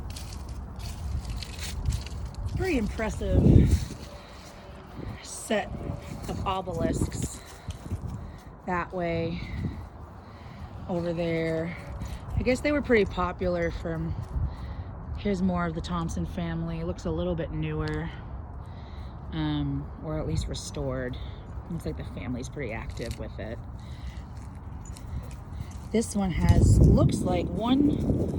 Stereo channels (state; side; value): identical; both; correlation 1.00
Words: Pretty impressive set of obelisks that way, over there. I guess they were pretty popular from, here's more of the Thompson family. It looks a little bit newer, or at least restored. Looks like the family's pretty active with it. This one looks like